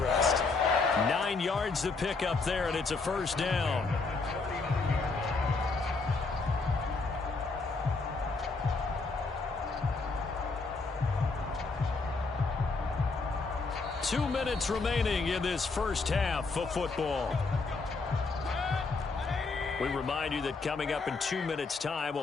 9 yards to pick up there, and it's a 1st down. 2 minutes remaining in this first half of football. We remind you that coming up in 2 minutes' time,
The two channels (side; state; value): right; quieter; 4.0 dB